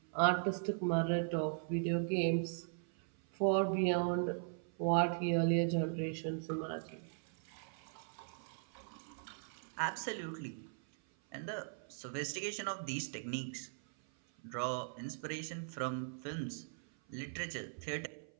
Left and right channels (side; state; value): left; silent; 52 dB below the other